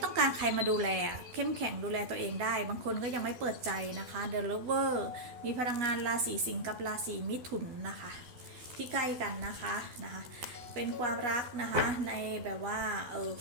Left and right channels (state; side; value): late; left; 12 ms